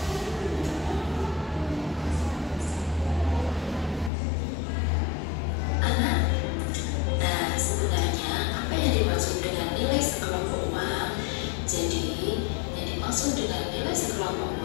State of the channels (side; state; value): right; drops out; at 4.1 s